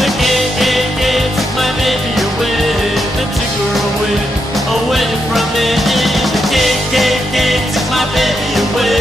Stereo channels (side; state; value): both; normal; correlation 0.82